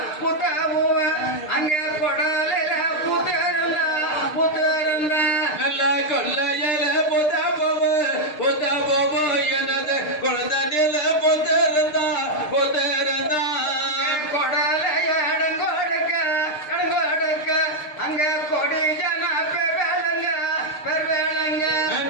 அங்க கொடலையில புத்தரந்தா நல்ல கொள்ளையில புத்த போவ எனது குழந்தண்ணில புத்தரந்தா புத்தரந்தா கொடலைய இடங்கொடுக்க அங்க கொடி ஜன பெருவேளங்க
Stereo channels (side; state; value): right; late; 6.6 ms